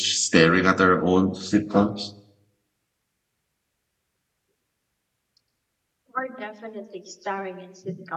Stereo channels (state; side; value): identical; both; correlation 1.00